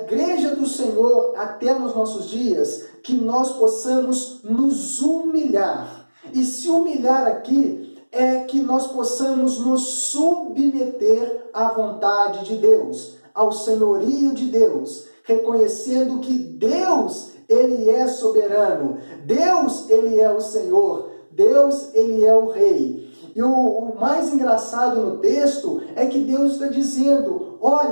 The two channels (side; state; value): both; inverted; correlation -1.00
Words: do Senhor até nos nossos dias, que nós possamos nos humilhar. E se humilhar aqui é que nós possamos nos submeter à vontade de Deus, ao senhorio de Deus, reconhecendo que Deus, ele é soberano, Deus, ele é o Senhor, Deus, ele é o Rei. E o mais engraçado no texto é que Deus está dizendo,